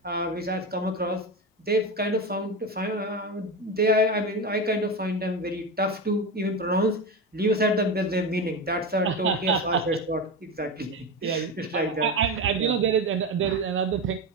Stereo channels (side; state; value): both; normal; correlation 0.19